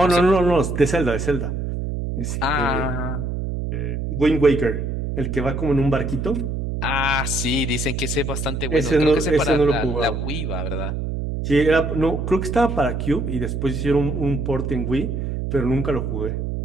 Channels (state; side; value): noise; right; hum, 3 dB below the sound